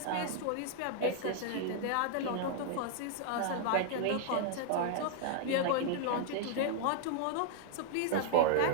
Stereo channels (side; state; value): both; different; correlation 0.00